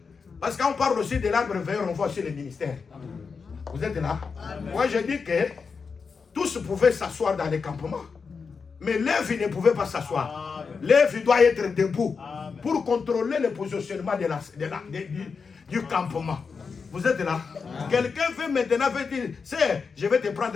Parce qu'on parle aussi de l'arbre veilleur, on voit aussi les ministères. Vous êtes là? Moi, je dis que tous pouvaient s'asseoir dans les campements. Mais Lévi ne pouvait pas s'asseoir. Lévi doit être debout pour contrôler le positionnement du campement. Vous êtes là? Quelqu'un veut maintenant dire, c'est, je vais te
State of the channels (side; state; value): right; quieter; 5.3 dB